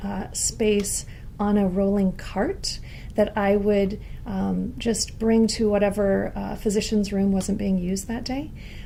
space on a rolling cart that I would just bring to whatever physician's room wasn't being used that day,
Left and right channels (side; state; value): both; identical; correlation 1.00